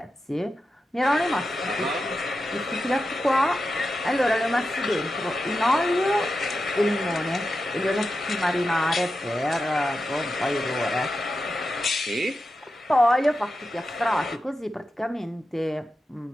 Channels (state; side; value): normal; both; correlation 0.90